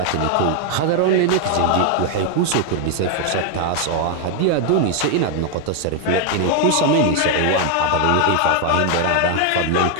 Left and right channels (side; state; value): both; different; correlation 0.00